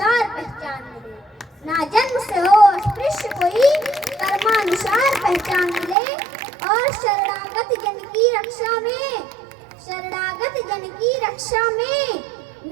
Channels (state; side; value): drops out; left; at 6.0 s